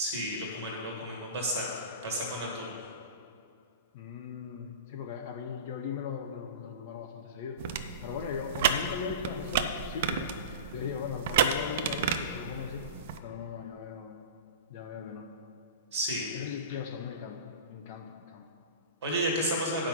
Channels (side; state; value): both; inverted; correlation -0.31